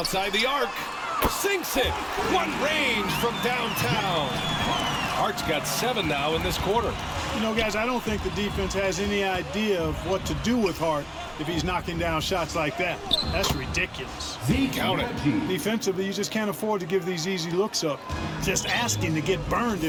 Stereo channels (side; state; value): both; identical; correlation 1.00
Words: the arc. Sinks it. What range from downtown. Hart's got 7 now in this quarter. You know, guys, I don't think the defense has any idea of what to do with Hart if he's knocking down shots like that. That's ridiculous. Count it. Defensively, you just can't afford to give these easy looks up. Just asking to get burned